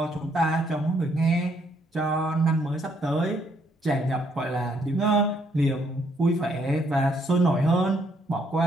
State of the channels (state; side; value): normal; both; correlation 0.70